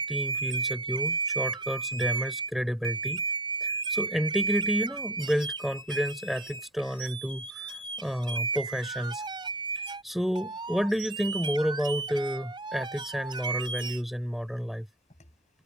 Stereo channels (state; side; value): normal; both; correlation 0.41